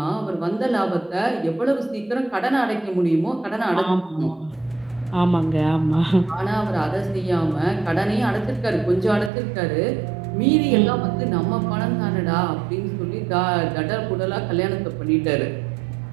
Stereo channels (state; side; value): drops out; left; at 9.3 s